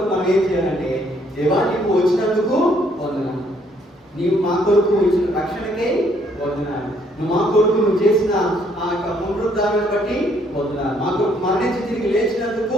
మనం ఏం చేయాలంటే, దేవా నీవు వచ్చినందుకు వందనాలు, నీవు మా కొరకు ఇచ్చిన రక్షణకే వందనాలు, నువ్వు మా కొరకు నువ్వు చేసిన ఆ యొక్క పునరుద్ధారాన్ని బట్టి వందనాలు, మా కొరకు మరణించి తిరిగి లేచినందుకు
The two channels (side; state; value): both; normal; correlation 0.67